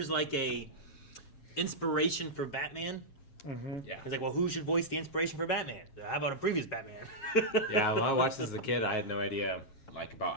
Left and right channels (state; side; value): late; right; 7.4 ms